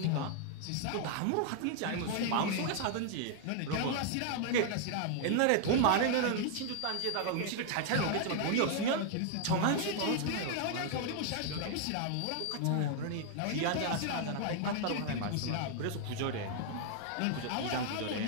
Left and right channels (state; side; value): different; both; correlation 0.00